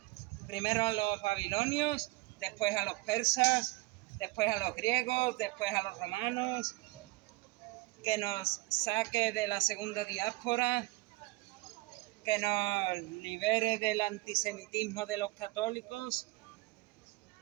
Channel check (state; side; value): quieter; left; 21.8 dB